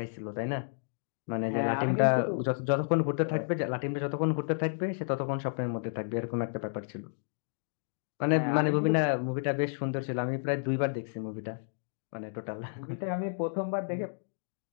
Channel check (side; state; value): right; silent; digital silence